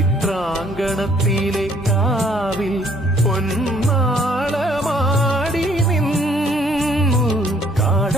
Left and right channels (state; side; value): normal; both; correlation 0.62